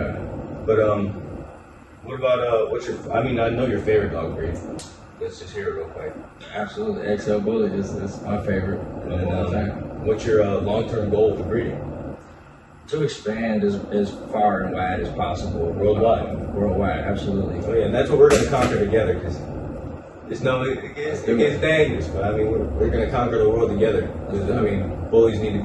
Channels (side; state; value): both; identical; correlation 1.00